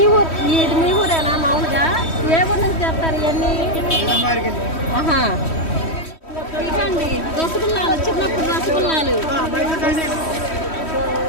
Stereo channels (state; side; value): late; right; 3.1 ms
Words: మీ ఊరేనా? మామూలుగా ఏ ఊరు నుంచి చేస్తారు ఇవన్నీ? ఇదండి రసగుల్లాలు, చిన్నప్పుడు రసగుల్లాలు.